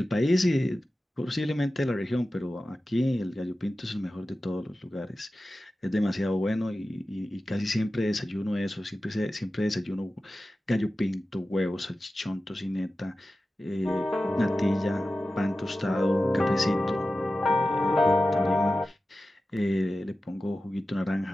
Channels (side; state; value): both; normal; correlation 0.94